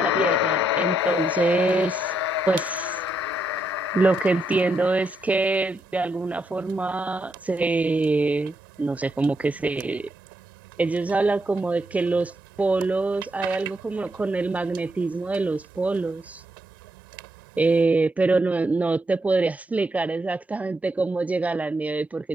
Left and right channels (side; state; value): both; normal; correlation 0.80